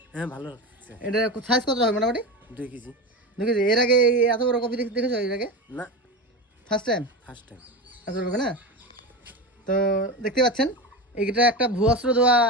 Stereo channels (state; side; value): normal; both; correlation 0.22